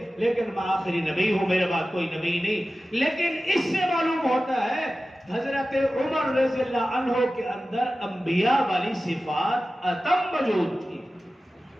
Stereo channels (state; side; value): normal; both; correlation 0.95